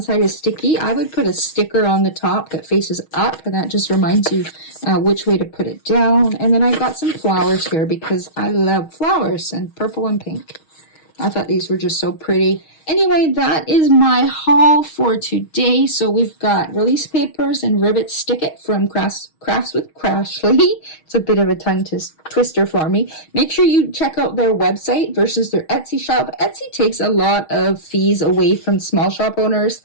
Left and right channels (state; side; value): late; right; 6.3 ms